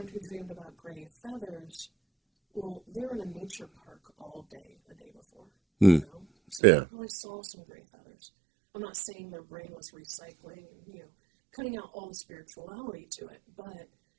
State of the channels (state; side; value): drops out; left; at 6.6 s